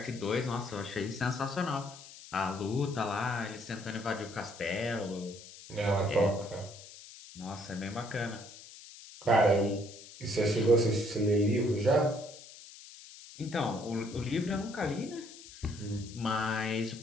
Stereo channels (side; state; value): left; noise; hiss, 17 dB below the sound